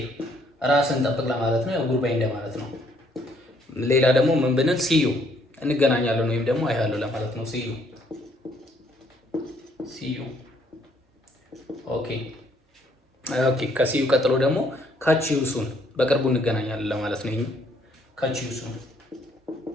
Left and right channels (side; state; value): both; normal; correlation 0.67